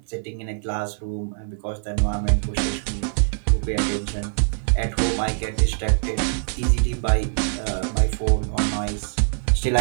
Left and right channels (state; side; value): silent; left; 57 dB below the other